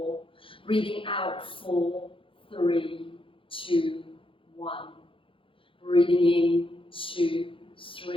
Breathing out, 4, 3, 2, 1. Breathing in, 2,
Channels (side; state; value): right; late; 0.25 ms